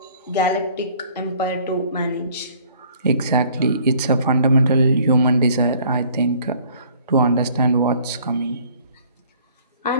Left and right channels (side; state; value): both; inverted; correlation -0.56